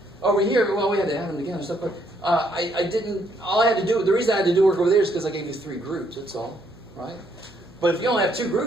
over here? Well, we had to add them together and stuff. But I didn't. All I had to do. The reason I had to do work over there is because I gave you 3 groups. That's all, right? But if you only have 2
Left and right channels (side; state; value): both; normal; correlation 0.70